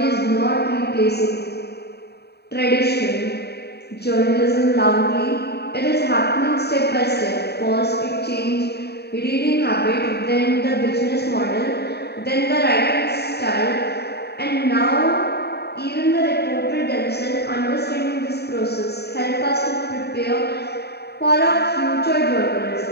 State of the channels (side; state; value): right; late; 0.48 ms